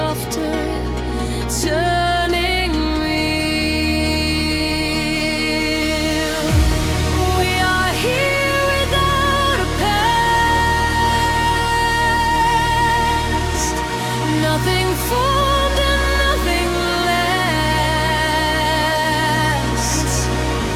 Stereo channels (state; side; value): identical; both; correlation 1.00